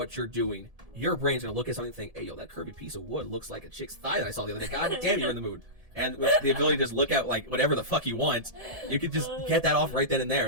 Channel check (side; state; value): left; late; 1.7 ms